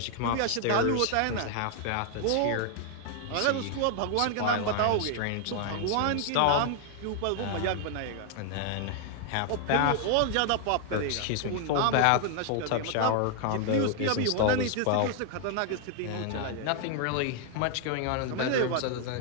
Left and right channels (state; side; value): different; both; correlation 0.00